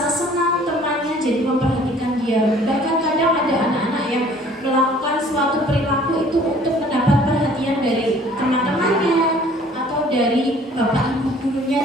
senang temannya jadi memperhatikan dia. Bahkan kadang ada anak-anak yang melakukan suatu perilaku itu untuk mendapat perhatian dari teman-temannya atau dari Bapak Ibu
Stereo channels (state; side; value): normal; both; correlation 0.54